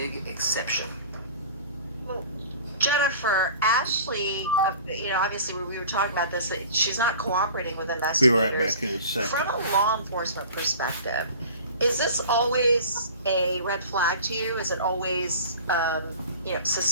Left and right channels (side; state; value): both; inverted; correlation -0.42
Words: exception. well, Jennifer, Ashley, obviously we were talking about this, that she's not cooperating with Be investigators. right back in a second. From a law enforcement perspective, is this always a red flag to you? Is it always,